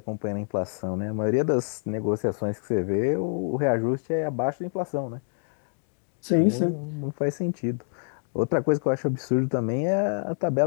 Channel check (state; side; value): silent; right; digital silence